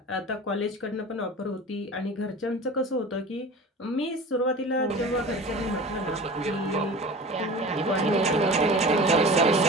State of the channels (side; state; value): both; normal; correlation 0.37